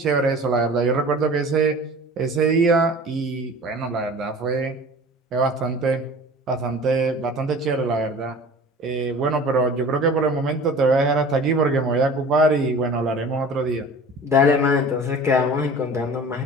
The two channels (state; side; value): normal; both; correlation 0.42